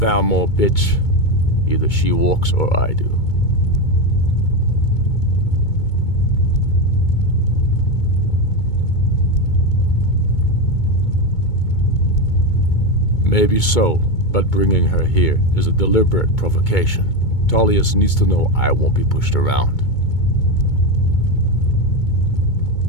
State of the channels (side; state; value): right; late; 2.2 ms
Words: bitch. Either she walks or I do. Maybe so, but bringing her here is a deliberate provocation. Tullius needs to know I won't be pushed around.